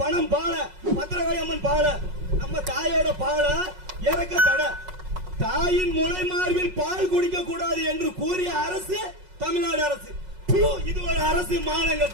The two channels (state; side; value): late; left; 5.4 ms